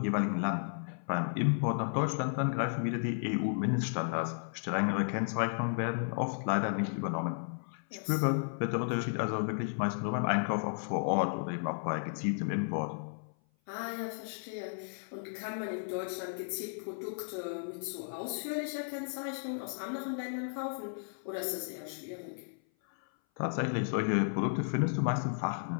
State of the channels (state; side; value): silent; right; 55 dB below the other